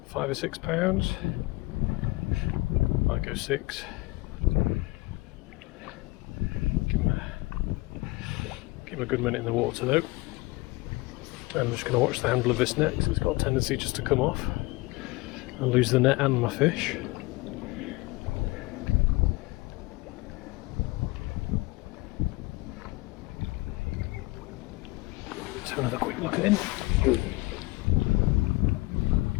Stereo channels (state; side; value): quieter; right; 22.1 dB